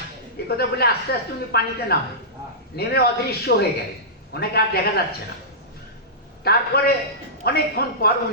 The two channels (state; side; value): normal; both; correlation -0.16